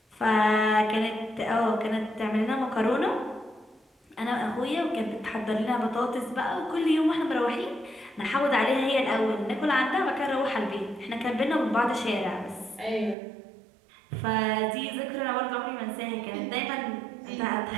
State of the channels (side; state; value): left; drops out; at 13.2 s